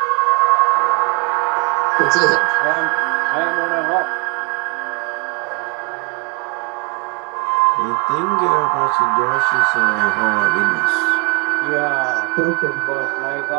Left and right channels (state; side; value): quieter; left; 32.6 dB